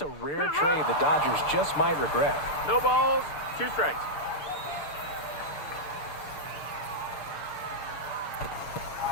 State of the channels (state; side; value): late; right; 6.8 ms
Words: a rare trade the Dodgers just might regret. No balls, 2 strikes.